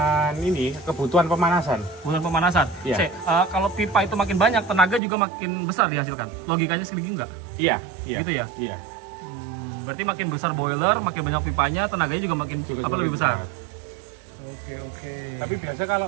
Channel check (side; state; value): left; drops out; at 5.0 s